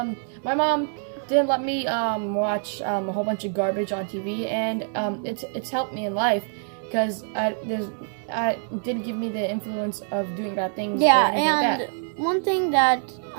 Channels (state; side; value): silent; left; 62 dB below the other